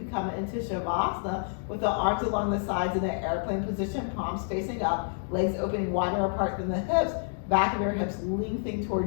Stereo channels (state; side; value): silent; right; digital silence